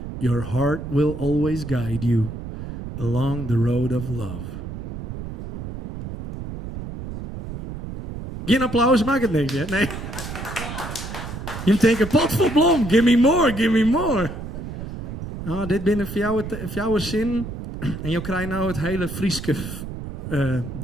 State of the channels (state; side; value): noise; right; rumble, 8 dB below the sound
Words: your heart will always guide you along the road of love. Geen applaus, maakt het niks, hè? Nee. Je denkt, pot vol blom, give me more, give me more. Nou, dit binnen voor jouw zin. En je krijgt nou het hele Frieske